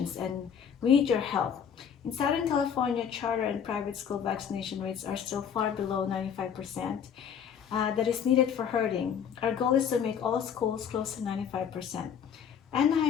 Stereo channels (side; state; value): right; quieter; 7.8 dB